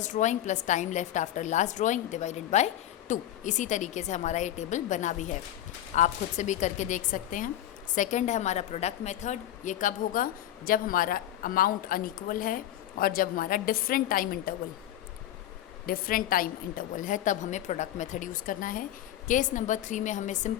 drawing plus time left after last drawing divided by 2। इसी तरीके से हमारा ये टेबल बना भी है, आप खुद से भी करके देख सकते हैं। सेकंड है हमारा प्रोडक्ट मेथड, ये कब होगा, जब हमारा अमाउंट अनइक्वल है और जब हमारा डिफरेंट टाइम इंटरवल है, तब हमें प्रोडक्ट मेथड यूज़ करना है। केस नंबर 3 में हमें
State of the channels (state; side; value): quieter; right; 12.5 dB